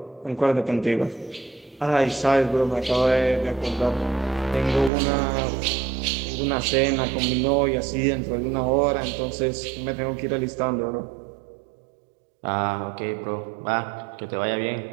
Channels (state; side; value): drops out; left; at 4.9 s